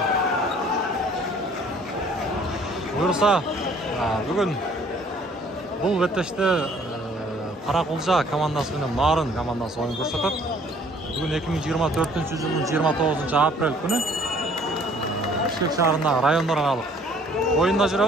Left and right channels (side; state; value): both; normal; correlation 0.57